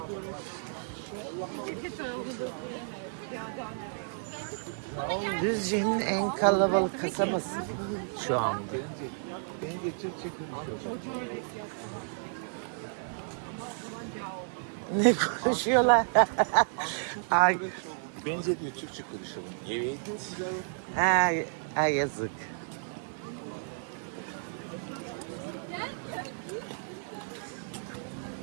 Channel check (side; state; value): left; silent; digital silence